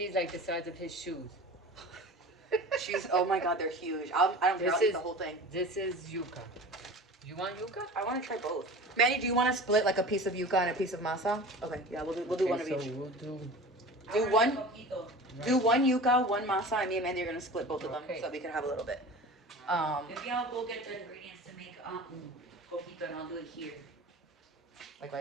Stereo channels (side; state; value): both; normal; correlation 0.37